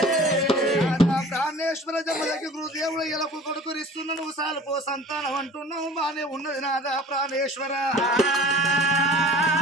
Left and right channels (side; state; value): both; normal; correlation 0.44